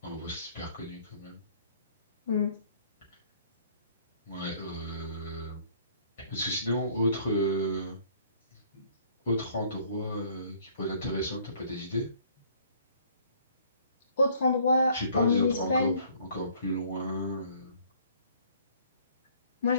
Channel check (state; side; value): inverted; both; correlation -0.58